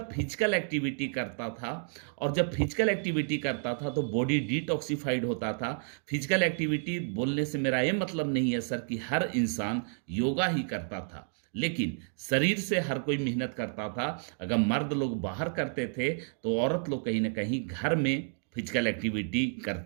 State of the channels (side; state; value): left; silent; 57 dB below the other